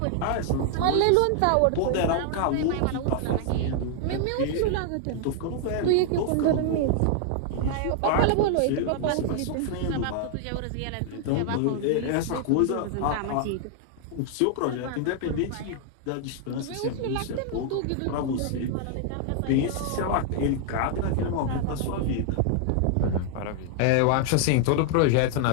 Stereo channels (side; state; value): both; different; correlation 0.00